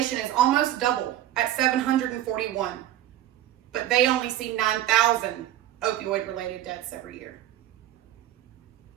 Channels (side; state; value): left; quieter; 12.9 dB